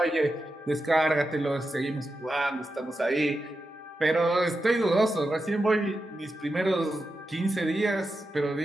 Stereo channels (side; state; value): both; normal; correlation 0.89